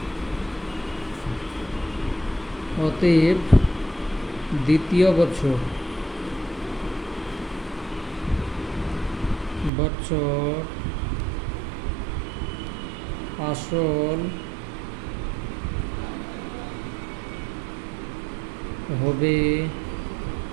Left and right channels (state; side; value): drops out; left; at 9.7 s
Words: অতএব দ্বিতীয় বছর আসল হবে